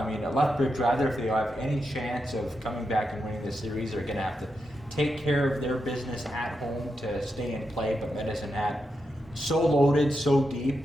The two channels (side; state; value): both; normal; correlation 0.86